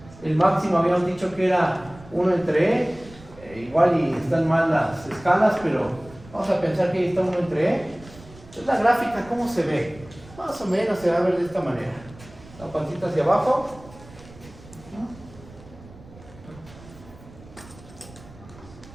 El máximo habíamos dicho que era 1 entre e. Igual y están mal las escalas, pero vamos a pensar que ahí está 1 entre e. Entonces la gráfica, ¿cómo se ve? Más o menos se va a ver de esta manera. La pancita hacia abajo.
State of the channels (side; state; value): right; noise; rumble, 20 dB below the sound